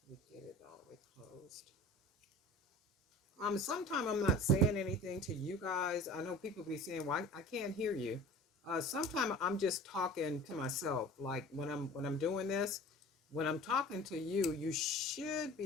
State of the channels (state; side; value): normal; both; correlation 0.41